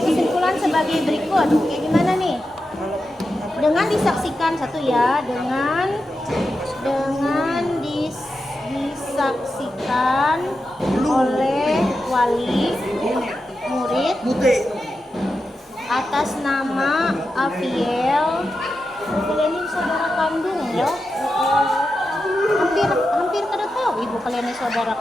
kesimpulan sebagai berikut. Kayak gimana nih? Dengan disaksikan satu ya, dengan disaksikan oleh wali murid atas nama Aviel Kalian ini saudara kandung ya? Hampir kada tahu ibu kalian ini saudara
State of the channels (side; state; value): both; normal; correlation 0.89